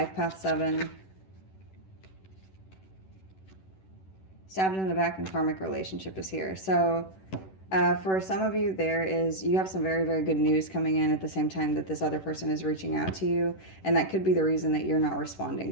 path 7. Stabbed in the back and karmic relationship is here. So for some of you, you have some very, very good news coming in at the same time that this other person is reaching out to you. And that could be the reason that you're not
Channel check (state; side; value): late; right; 11 ms